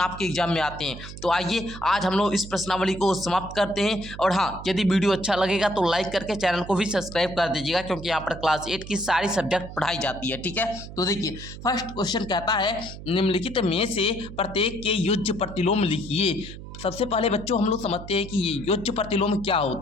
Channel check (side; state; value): right; noise; hum, 12 dB below the sound